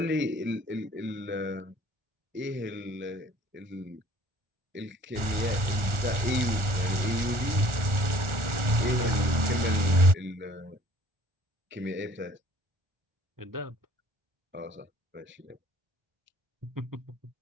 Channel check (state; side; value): late; left; 1.4 ms